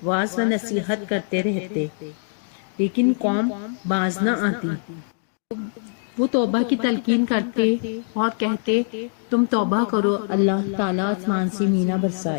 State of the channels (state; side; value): silent; right; digital silence